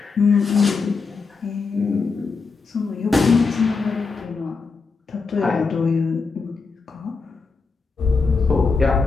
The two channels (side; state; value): right; quieter; 4.6 dB